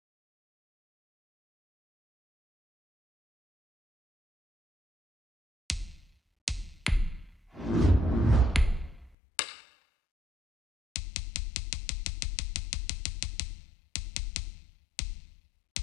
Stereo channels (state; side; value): drops out; right; at 9.2 s